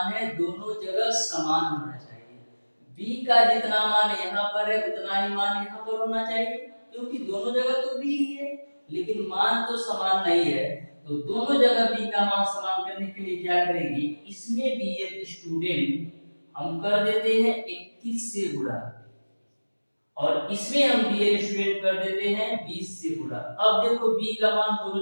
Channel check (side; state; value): both; inverted; correlation -1.00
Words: है दोनों जगह समान होना चाहिए। b का जितना मान यहाँ पर है उतना ही मान यहाँ पर होना चाहिए, क्योंकि दोनों जगह तो b ही है लेकिन मान तो समान नहीं है। तो दोनों जगह b का मान समान करने के लिए क्या करेंगे, इसमें डियर स्टूडेंट हम कर देते हैं 21 से गुणा, और इसमें हम डियर स्टूडेंट कर देते हैं 20 से गुणा। अब देखो b का मान